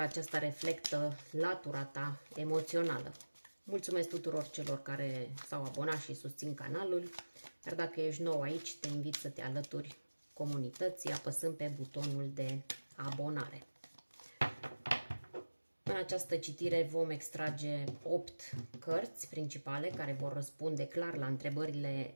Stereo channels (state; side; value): inverted; both; correlation -1.00